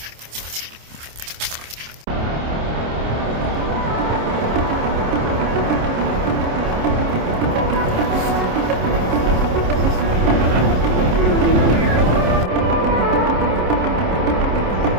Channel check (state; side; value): late; left; 27 ms